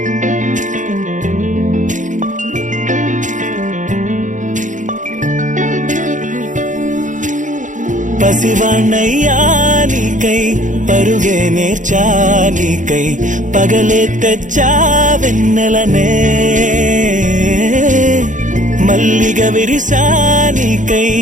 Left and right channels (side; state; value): left; late; 0.37 ms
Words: పసివాణ్ణయ్యా నీకై పరుగే నేర్చా నీకై పగలే తెచ్చా వెన్నెలనే మల్లిగ విరిసా నీకై